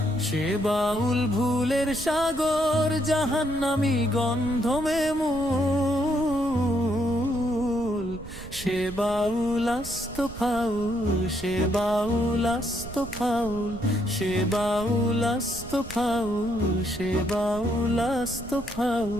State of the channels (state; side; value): noise; right; rumble, 14 dB below the sound